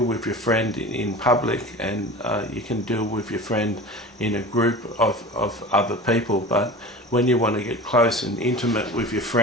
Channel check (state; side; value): normal; both; correlation 0.36